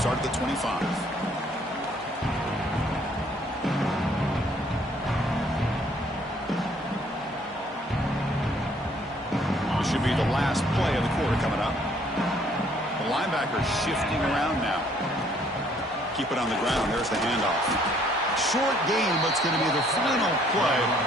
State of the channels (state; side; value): normal; both; correlation 0.63